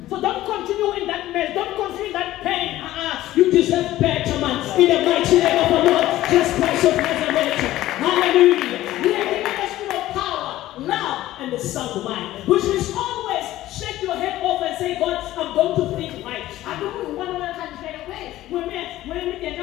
So don't continue in that mess, don't continue in that pain. You deserve better, man. In the mighty name of the Lord, Jesus Christ of Nazareth. Hallelujah. We are given the spirit of power, love, and the sound mind, which means always shake your head off and say, God, I'm going to think right. I don't want to say, when we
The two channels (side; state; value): right; quieter; 15.1 dB